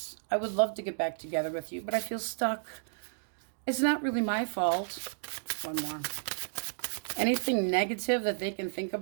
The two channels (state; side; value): silent; left; digital silence